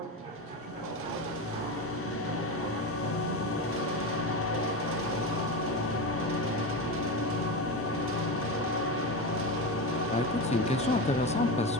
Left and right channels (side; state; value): both; normal; correlation 0.19